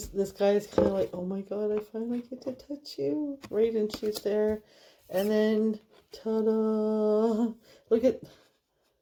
guy is kind of like, oh my God, I finally get to touch you. Right, and she's there. And then, ta-da! Look at...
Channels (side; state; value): both; identical; correlation 1.00